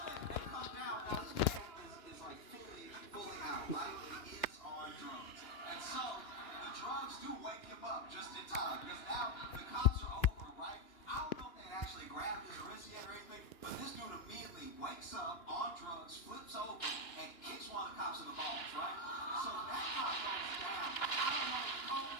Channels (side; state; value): right; late; 2.9 ms